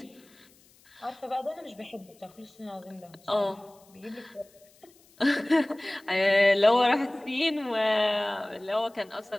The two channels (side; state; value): left; noise; hiss, 29 dB below the sound